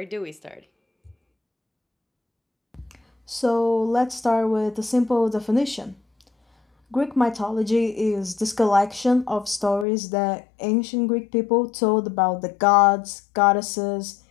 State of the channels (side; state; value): right; drops out; at 9.9 s